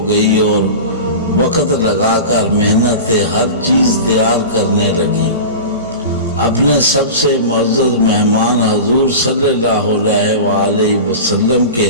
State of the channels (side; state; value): both; inverted; correlation -0.30